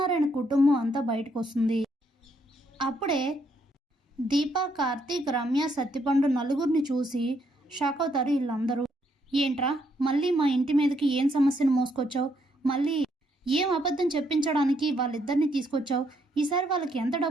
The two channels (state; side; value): normal; both; correlation 0.73